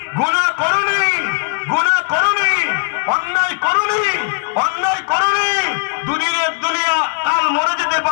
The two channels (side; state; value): right; quieter; 39.3 dB